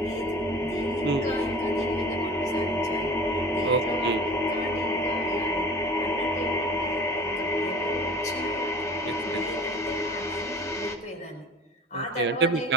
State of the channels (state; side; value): normal; both; correlation 0.41